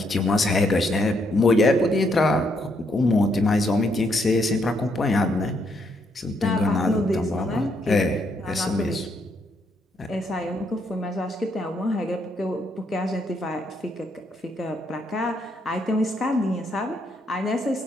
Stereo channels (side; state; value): both; normal; correlation 0.74